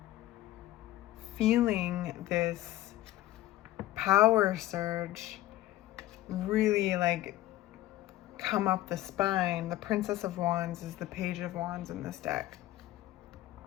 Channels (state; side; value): quieter; right; 15.4 dB